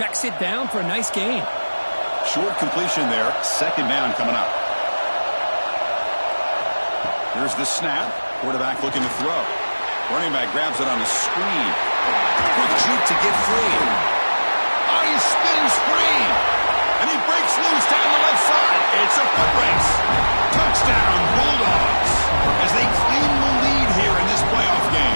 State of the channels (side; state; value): both; inverted; correlation -1.00